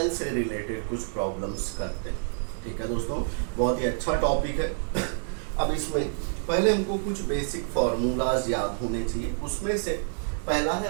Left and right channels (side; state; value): left; silent; digital silence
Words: से रिलेटेड कुछ प्रॉब्लम्स करते हैं। ठीक है दोस्तों, बहुत ही अच्छा टॉपिक है। अब इसमें पहले हमको कुछ बेसिक फार्मूलाज याद होने चाहिए। उसमें से पहला